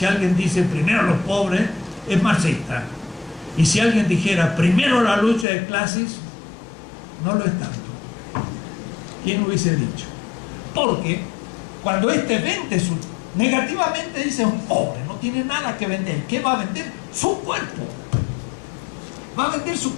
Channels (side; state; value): right; drops out; at 5.5 s